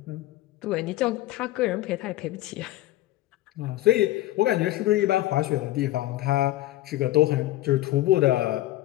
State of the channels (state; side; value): quieter; right; 16.0 dB